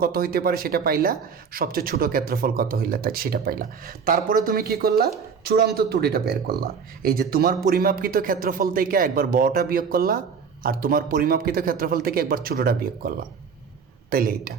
কত হইতে পারে সেটা পাইলা, সবচেয়ে ছোট ক্ষেত্রফল কত হইলে তাই সেটা পাইলা। তারপরে তুমি কি করলা, চূড়ান্ত ত্রুটিটা বের করলা, এই যে তোমার পরিমাপকৃত ক্ষেত্রফল থেকে একবার বড়টা বিয়োগ করলা, আর তোমার পরিমাপকৃত ক্ষেত্রফল থেকে একবার ছোটটা বিয়োগ করলা, তাইলে এইটা।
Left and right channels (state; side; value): quieter; left; 6.2 dB